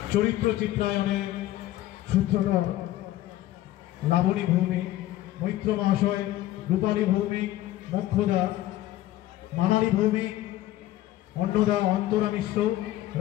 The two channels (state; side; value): quieter; right; 14.9 dB